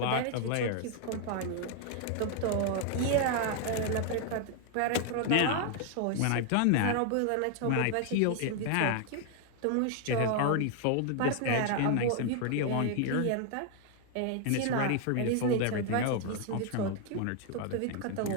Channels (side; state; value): both; different; correlation 0.00